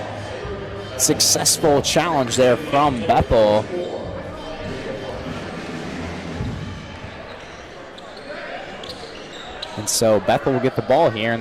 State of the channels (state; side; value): identical; both; correlation 1.00